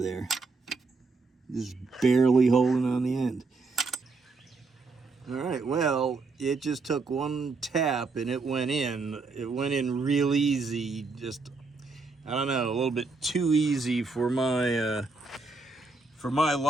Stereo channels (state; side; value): quieter; left; 3.9 dB